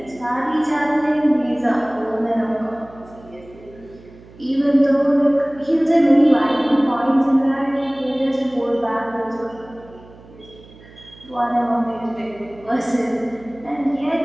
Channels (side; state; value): right; noise; hum, 22 dB below the sound